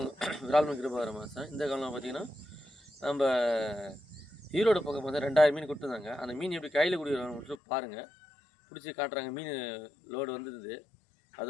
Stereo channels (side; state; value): right; drops out; at 7.6 s